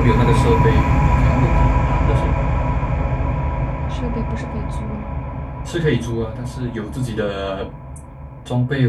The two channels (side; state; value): both; identical; correlation 1.00